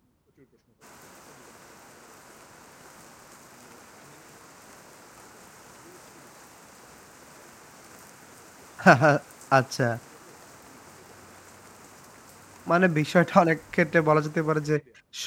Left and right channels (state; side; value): identical; both; correlation 1.00